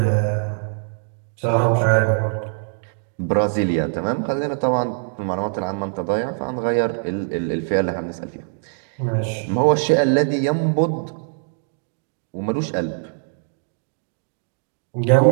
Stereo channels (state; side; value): silent; left; digital silence